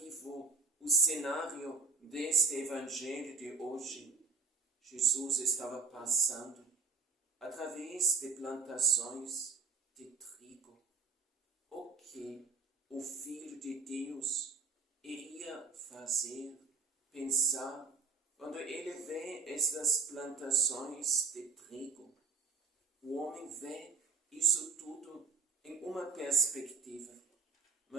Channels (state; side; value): quieter; left; 4.4 dB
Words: o cenário deste Evangelho de hoje. Jesus estava passando através de plantações de trigo. O que o Filho de Deus iria fazer, pensar, quando ele vê estas plantações de trigo? O homem vê isso tudo em uma perspectiva,